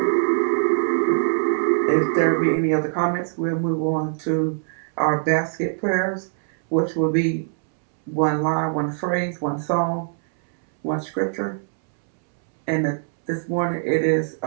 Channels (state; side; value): silent; left; 64 dB below the other